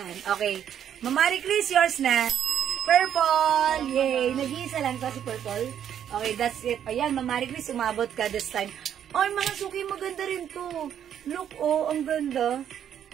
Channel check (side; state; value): left; quieter; 9.5 dB